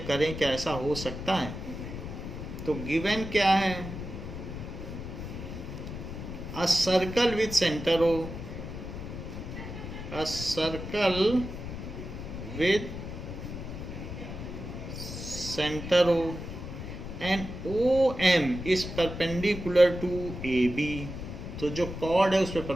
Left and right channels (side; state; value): left; noise; rumble, 8 dB below the sound